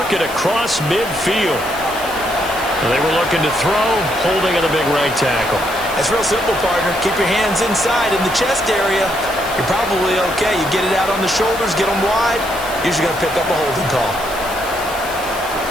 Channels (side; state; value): left; noise; hiss, 14 dB below the sound